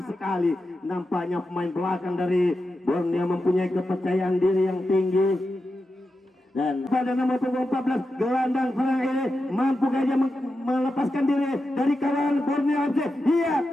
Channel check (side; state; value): both; normal; correlation 0.90